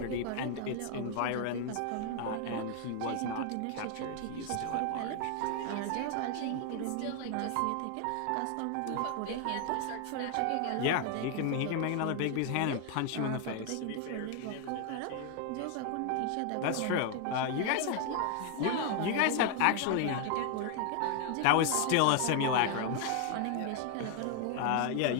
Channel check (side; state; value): both; different; correlation 0.00